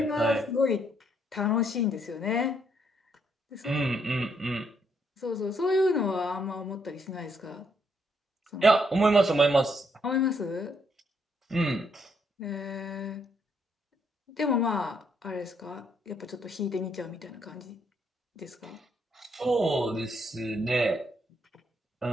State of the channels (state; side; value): normal; both; correlation 0.73